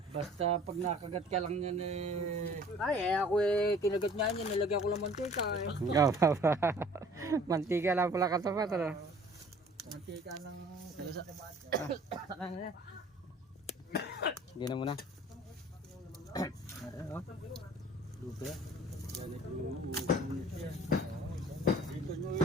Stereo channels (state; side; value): normal; both; correlation 0.50